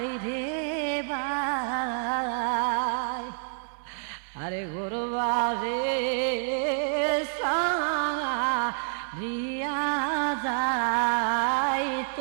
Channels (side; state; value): left; silent; 59 dB below the other